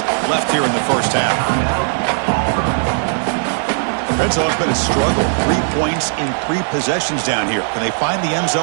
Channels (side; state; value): left; silent; digital silence